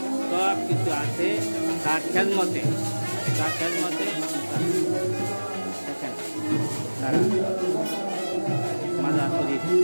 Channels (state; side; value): inverted; both; correlation -1.00